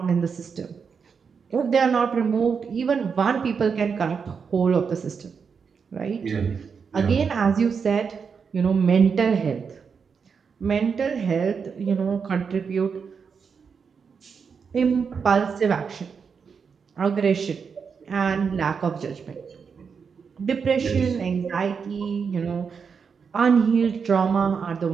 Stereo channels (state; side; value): quieter; left; 6.0 dB